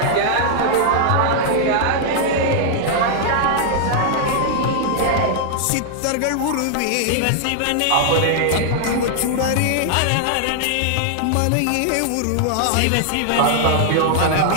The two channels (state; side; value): different; both; correlation -0.01